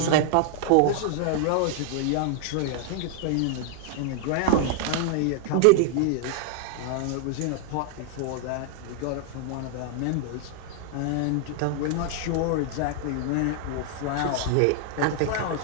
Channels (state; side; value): different; both; correlation 0.00